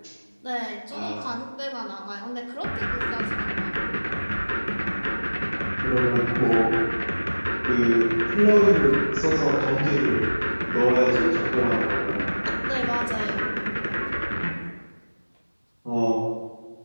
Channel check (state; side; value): inverted; both; correlation -1.00